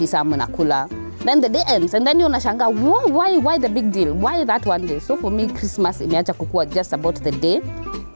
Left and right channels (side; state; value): both; inverted; correlation -1.00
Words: mnakula. Then the day ends and then you unashanga, why the big deal? Why that one day? So for me, Christmas imeacha kukua just about the day,